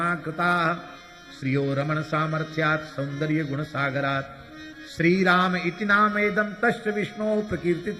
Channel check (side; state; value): both; identical; correlation 1.00